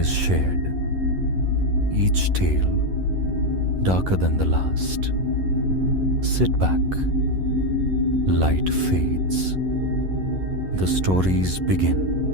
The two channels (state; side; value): late; left; 11 ms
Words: shared. Each tale darker than the last. Sit back. Light fades. The stories begin.